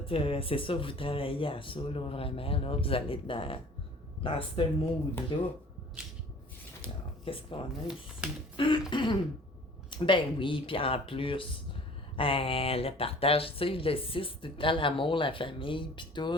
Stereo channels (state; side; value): normal; both; correlation 0.49